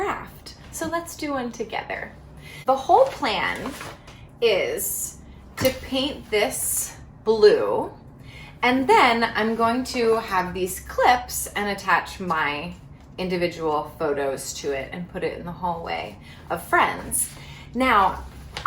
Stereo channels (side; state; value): both; identical; correlation 1.00